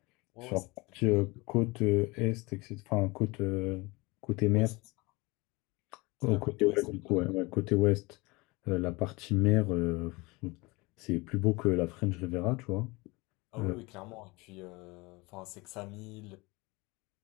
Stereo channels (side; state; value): right; quieter; 24.4 dB